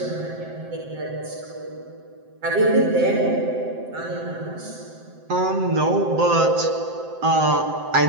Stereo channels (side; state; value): left; late; 7.7 ms